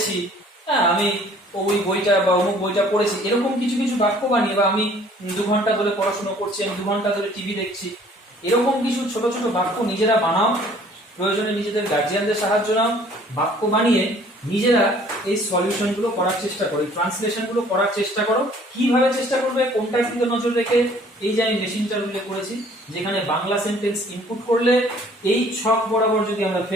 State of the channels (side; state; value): both; normal; correlation 0.55